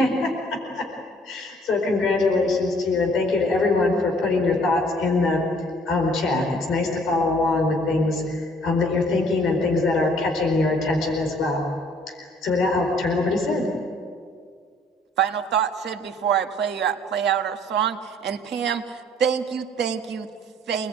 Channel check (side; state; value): both; normal; correlation 0.58